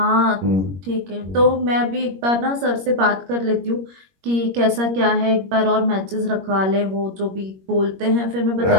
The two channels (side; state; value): left; late; 21 ms